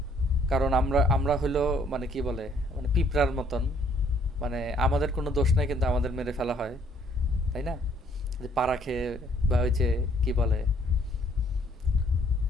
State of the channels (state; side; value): normal; both; correlation 0.63